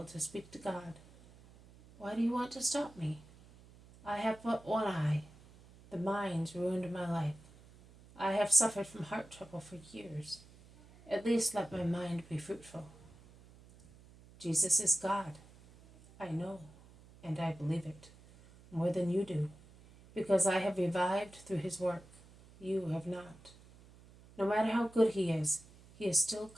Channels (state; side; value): noise; right; hum, 23 dB below the sound